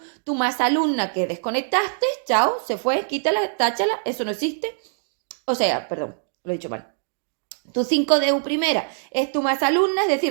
más alumna que desconectaste, chao, se fue, quítala, táchala, eso no existe. O sea, perdón, lo he dicho mal. Tu 5DU primera es tu más alumna, es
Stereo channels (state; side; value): silent; left; digital silence